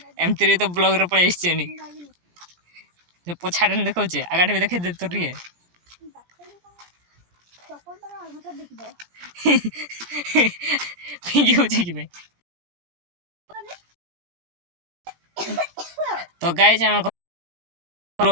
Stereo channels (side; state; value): left; late; 17 ms